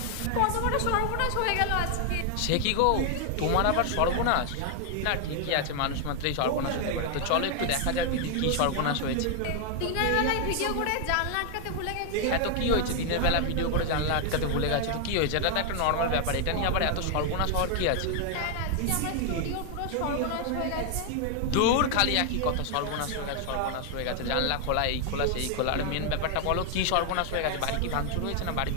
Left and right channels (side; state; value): both; different; correlation 0.00